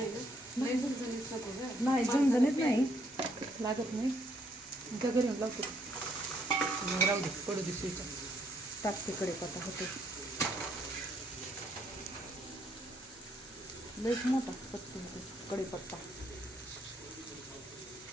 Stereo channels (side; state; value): both; normal; correlation 0.70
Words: ना नाही झणझणीत नको गं. नाही झणझणीत नाही लागत नाही. घरून लावतो राहू दे पडू दे स्वीच. टाकते कढीपत्ता होते लईच मोठा पत्ता होते कढीपत्ता.